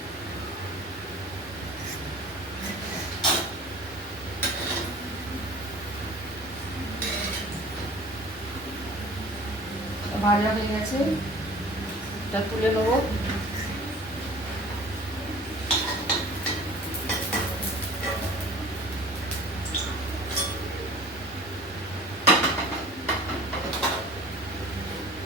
ভাজা হয়ে গেছে, এটা তুলে নেবো।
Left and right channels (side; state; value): both; normal; correlation 0.44